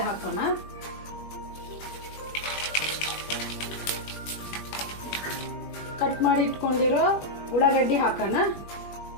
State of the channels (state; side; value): late; right; 20 ms